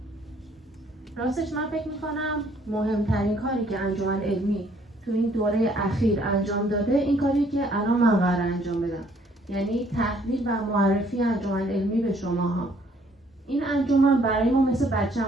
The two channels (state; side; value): normal; both; correlation 0.63